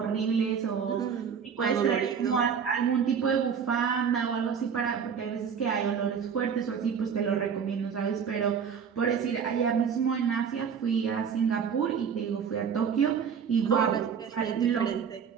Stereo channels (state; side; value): quieter; left; 6.9 dB